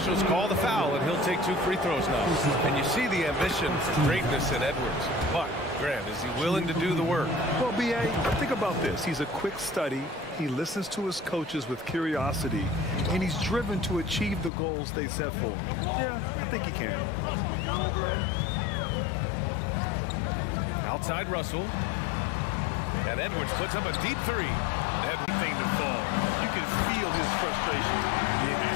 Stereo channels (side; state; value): right; drops out; at 14.5 s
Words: call the foul, and he'll take 2 free throws now. And you see the ambition for greatness in Edwards. But, Grant, is he willing to do the work? Well, B.A., think about this. He's a quick study. He listens to his coaches with curiosity, and he's driven to achieve the goals they set for him. Yeah, I think he can. Outside Russell. And Edwards puts up a deep 3. Everything to fall. You can feel his frustration.